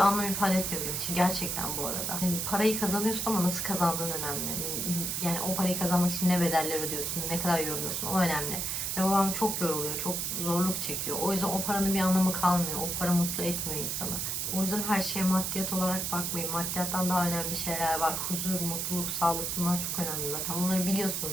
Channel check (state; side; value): noise; right; hiss, 1 dB below the sound